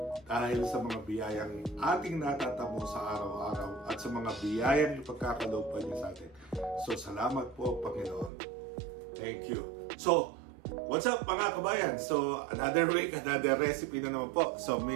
dahil sa mga biyayang ating natatamo sa araw-araw at sa mga biyayang ipagkakaloob pa niya sa atin. So salamat po, Panginoon. Thank you. So, what's up mga kabayan? So, another week, another recipe na naman po. So,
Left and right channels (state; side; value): drops out; left; at 8.3 s